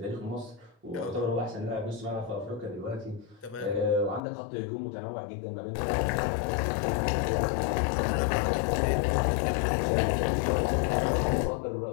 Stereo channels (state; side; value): drops out; right; at 4.2 s